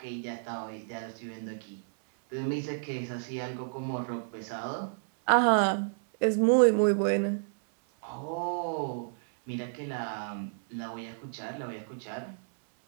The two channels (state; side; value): silent; left; 57 dB below the other